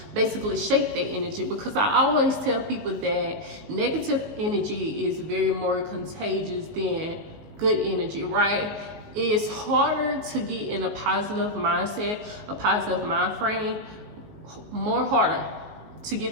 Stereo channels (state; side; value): late; left; 19 ms